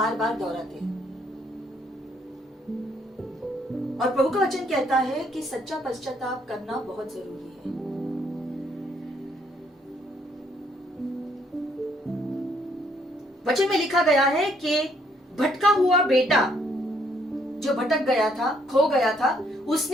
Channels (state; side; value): normal; both; correlation 0.69